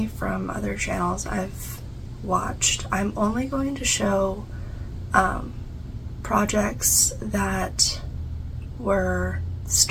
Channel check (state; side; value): identical; both; correlation 1.00